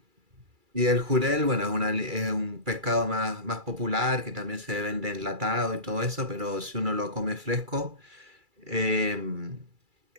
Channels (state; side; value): late; left; 2.3 ms